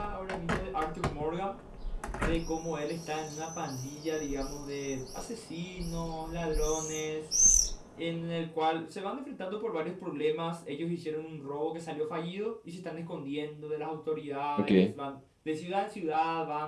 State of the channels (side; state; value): both; identical; correlation 1.00